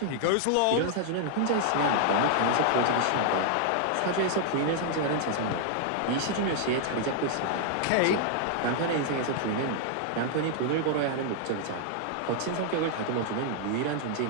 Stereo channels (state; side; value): different; both; correlation -0.01